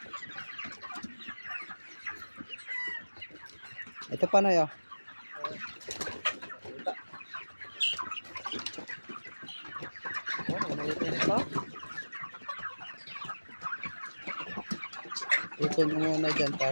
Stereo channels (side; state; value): both; inverted; correlation -1.00